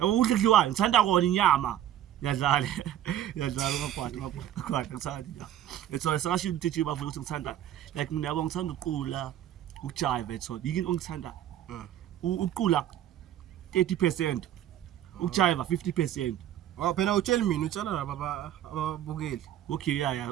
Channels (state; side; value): quieter; left; 11.6 dB